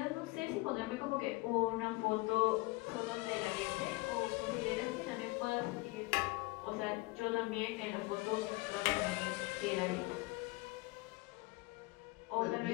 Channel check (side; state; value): right; quieter; 23.1 dB